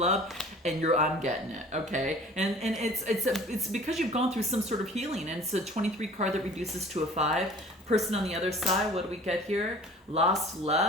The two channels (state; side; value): normal; both; correlation 0.47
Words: and I'm getting it. Okay, and it's because you've gone through some sort of healing, and it's a 23 card that reduces to a 5. Person on the other side, what do we get here? Lost